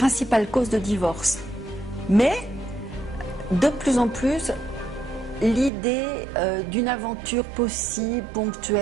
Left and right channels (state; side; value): drops out; left; at 5.7 s